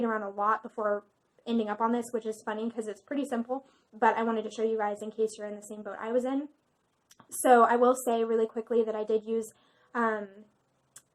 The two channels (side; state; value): both; identical; correlation 1.00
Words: around a lot before ending up on this, which is funny because it's pretty simple, but I wanted to show you guys in case you're in the same boat I was in. So I will say really quickly that I did use